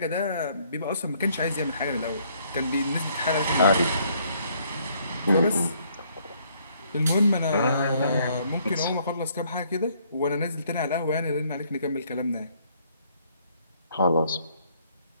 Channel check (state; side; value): inverted; both; correlation -0.66